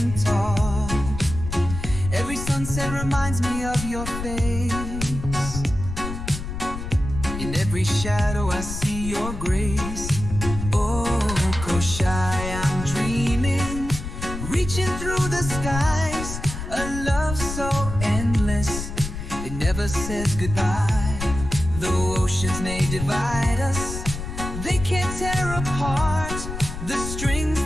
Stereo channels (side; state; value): left; noise; rumble, 7 dB below the sound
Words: tall. Every sunset reminds me of your face. In every shadow I see your grace. Oh, Kosrae, I'm dreaming, reaching through the skies. A love so endless, it never says goodbye. Though oceans may divide us, they can't tear apart the strings